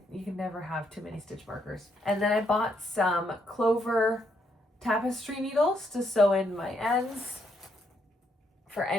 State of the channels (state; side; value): normal; both; correlation 0.75